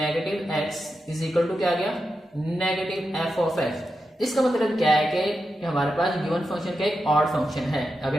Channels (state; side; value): normal; both; correlation 0.89